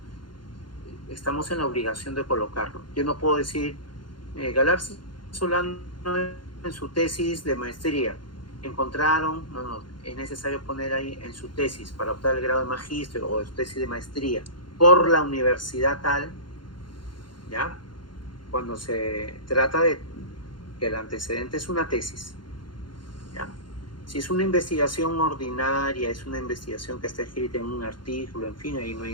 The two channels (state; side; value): late; right; 0.71 ms